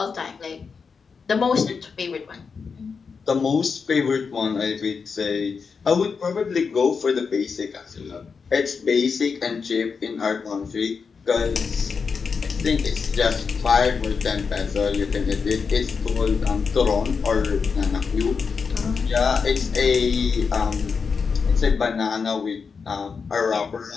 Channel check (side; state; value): right; quieter; 5.5 dB